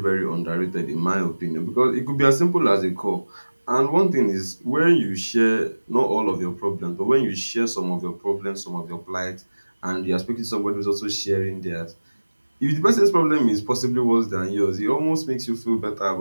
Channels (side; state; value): both; inverted; correlation -1.00